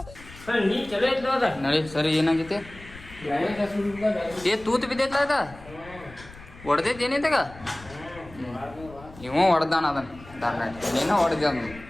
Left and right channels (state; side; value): noise; left; rumble, 19 dB below the sound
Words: ನಡಿ. ಸರಿ ಏನಾಗೈತಿ? ತೂತು ಬಿದ್ದೈತ ಅದ ಹೊಡೆದೈತಿ ಏನೈತಗ? ಇವ ಹೊಡೆದಾನ ಅದನ್ನ ನೀನು ಹೊಡೆದ.